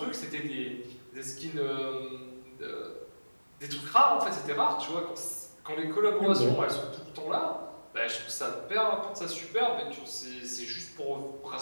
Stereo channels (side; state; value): both; inverted; correlation -1.00